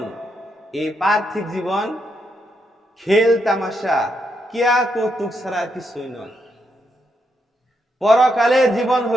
এই পার্থিব জীবন খেল তামাশা, কিয়া কৌতুক ছাড়া কিছুই নয়। পরকালের জীবন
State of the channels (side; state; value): both; normal; correlation 0.80